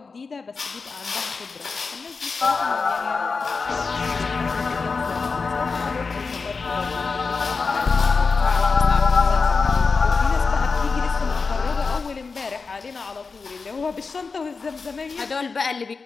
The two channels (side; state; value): right; quieter; 4.6 dB